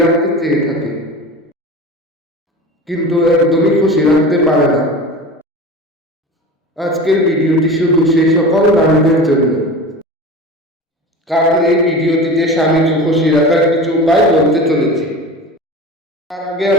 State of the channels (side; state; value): both; normal; correlation 0.33